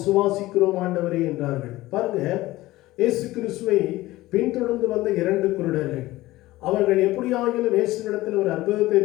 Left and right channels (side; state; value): right; quieter; 17.7 dB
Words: ஆண்டவரே என்றார்கள். பாருங்க, இயேசு கிறிஸ்துவை பின்தொடர்ந்து வந்த 2 குருடர்கள் அவர்கள் எப்படியாகிலும் இயேசுவிடத்தில் ஒரு அற்புதத்தை